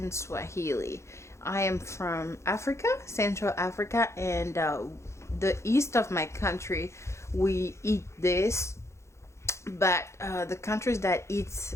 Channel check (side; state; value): right; late; 0.14 ms